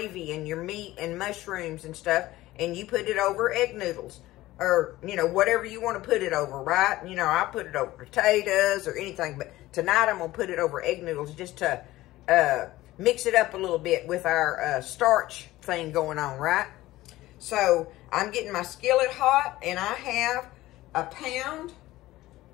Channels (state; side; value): quieter; right; 17.0 dB